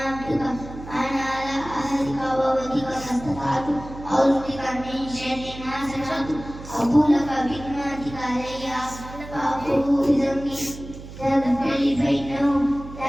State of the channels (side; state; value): right; noise; hum, 14 dB below the sound